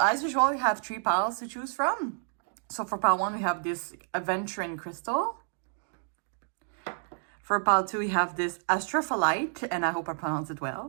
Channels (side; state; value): left; silent; digital silence